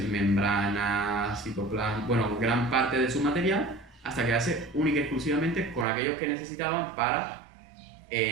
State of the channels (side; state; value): left; drops out; at 5.9 s